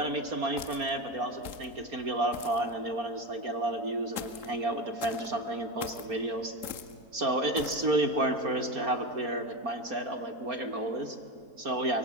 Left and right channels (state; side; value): late; left; 3.7 ms